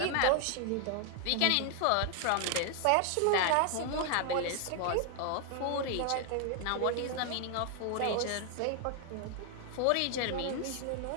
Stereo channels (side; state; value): both; different; correlation 0.00